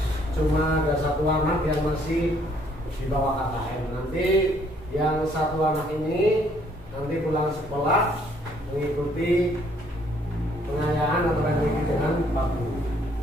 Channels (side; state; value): both; normal; correlation 0.65